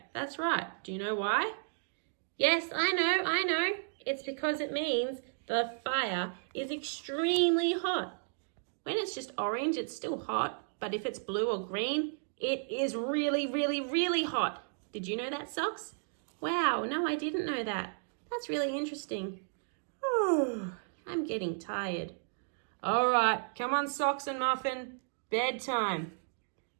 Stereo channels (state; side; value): silent; left; digital silence